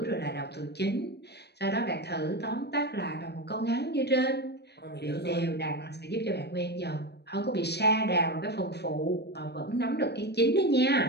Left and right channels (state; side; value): late; right; 0.48 ms